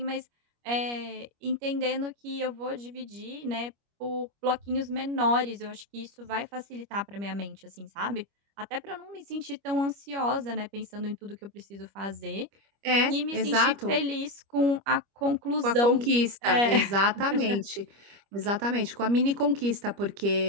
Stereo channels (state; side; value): late; left; 25 ms